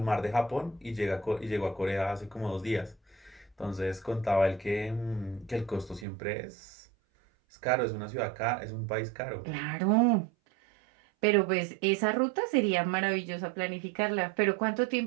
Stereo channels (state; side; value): drops out; left; at 6.1 s